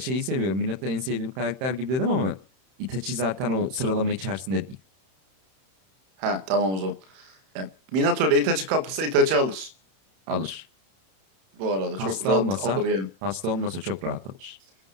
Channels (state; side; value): late; left; 31 ms